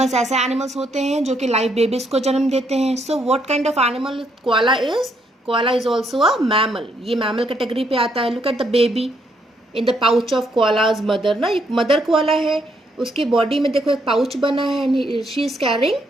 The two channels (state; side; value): normal; both; correlation 0.73